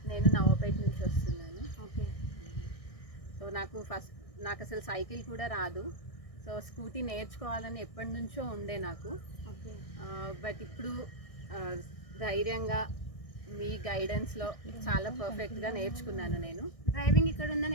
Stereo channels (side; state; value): right; late; 1.6 ms